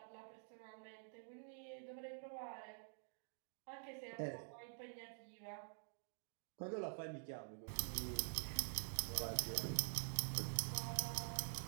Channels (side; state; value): left; silent; digital silence